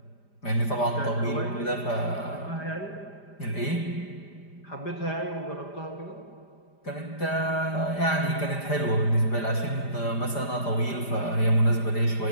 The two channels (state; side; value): late; right; 5.0 ms